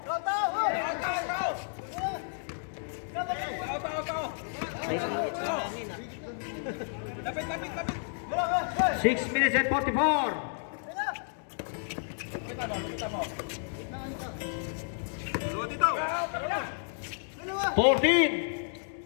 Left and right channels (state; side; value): silent; right; digital silence